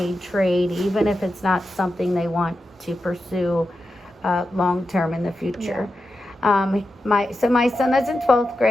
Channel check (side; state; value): both; normal; correlation 0.90